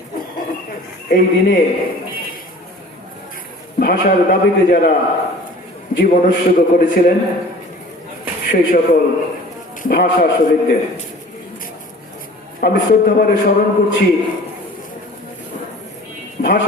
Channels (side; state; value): both; normal; correlation 0.45